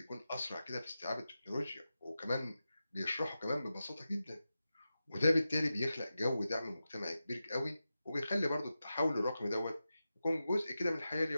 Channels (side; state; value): both; inverted; correlation -0.92